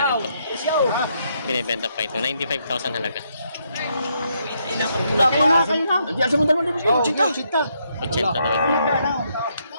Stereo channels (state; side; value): inverted; both; correlation -0.75